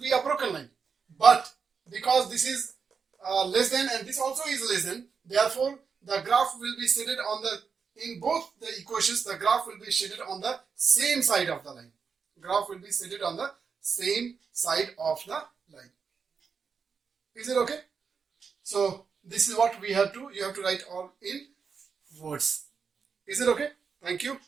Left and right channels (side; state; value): left; quieter; 5.8 dB